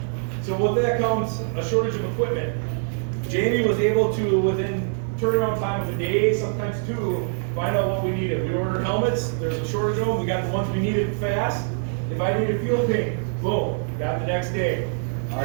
So with that comes a shortage of equipment. Jamie was able to, within turnaround time of a day, sometimes 2, find out what we needed. We ordered helmets, there's a shortage of them, we got the ones we needed fast. If I needed field paint, boom, got the next day.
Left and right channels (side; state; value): left; silent; digital silence